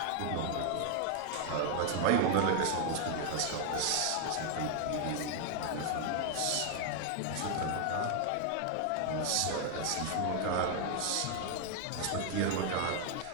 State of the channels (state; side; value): different; both; correlation 0.00